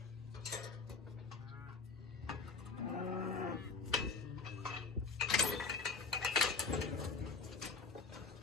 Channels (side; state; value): right; quieter; 4.5 dB